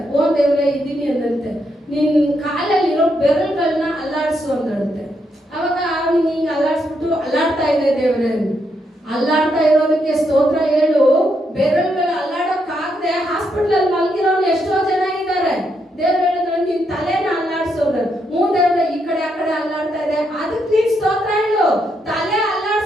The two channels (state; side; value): normal; both; correlation 0.79